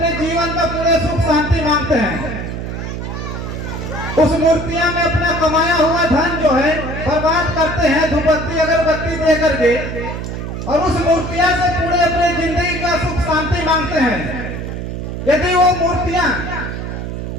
जीवन में पूरे सुख शांति मांगते हैं। उस मूर्तियां में अपना कमाया हुआ धन जो है बर्बाद करते हैं धूपबत्ती अगरबत्ती दे करके, और उस मूर्तियां से पूरे अपने जिंदगी का सुख शांति मांगते हैं। यदि वो मूर्तियां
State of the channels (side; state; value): right; noise; hum, 6 dB below the sound